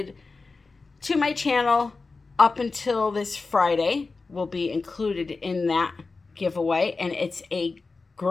to my channel up until this Friday, will be included in that giveaway. And it's a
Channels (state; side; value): quieter; right; 4.0 dB